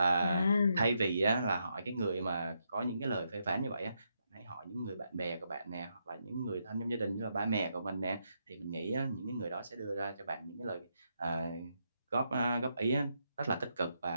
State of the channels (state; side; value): inverted; both; correlation -0.80